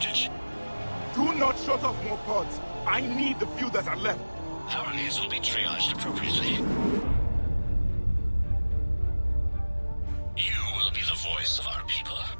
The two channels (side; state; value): both; inverted; correlation -1.00